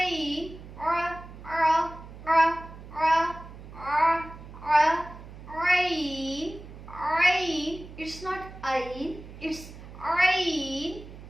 Ra, ra, ra, ra, ra, ra. Rain, rain. It's not ain, it's rain,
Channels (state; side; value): noise; right; hum, 15 dB below the sound